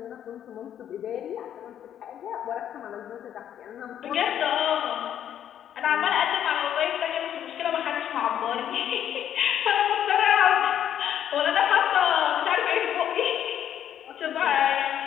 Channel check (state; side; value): quieter; right; 10.1 dB